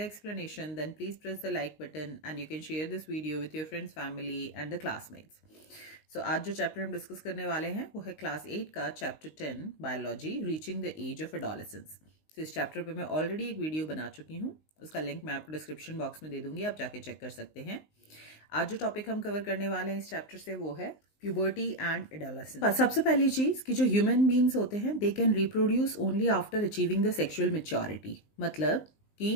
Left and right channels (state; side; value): late; right; 19 ms